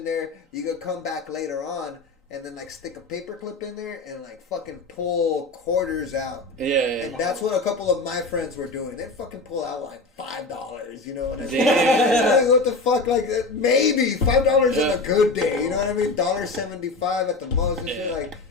there, you could come back later on and then like stick a paper clip in there and like fucking pull quarters out. Yeah. And that's what a couple of my friends were doing. They'd fucking pull out like $5. You know what I mean? Damn. What the fuck? Like maybe $5 on a good day. You know what I mean? $1.75 at the most and shit. Like,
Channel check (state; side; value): quieter; right; 3.3 dB